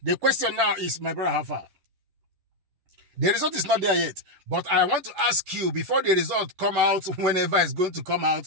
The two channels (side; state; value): left; late; 11 ms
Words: The question now is, my brother, how far? The result is not there yet, but I want to ask you, before the result come out, whenever it's going to come out,